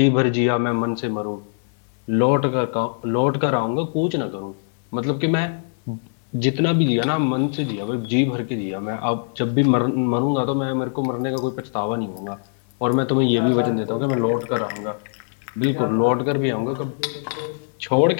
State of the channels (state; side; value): silent; right; digital silence